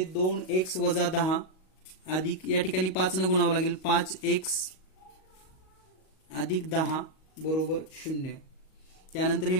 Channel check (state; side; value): late; right; 38 ms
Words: 2x वजा 10 अधिक या ठिकाणी 5 न गुणावं लागेल 5x अधिक 10 बरोबर 0. त्यानंतर हे